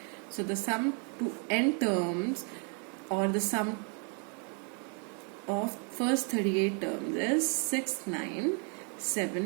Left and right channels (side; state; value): left; quieter; 38.7 dB